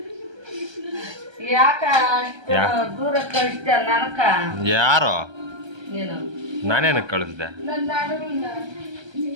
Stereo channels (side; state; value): left; late; 1.3 ms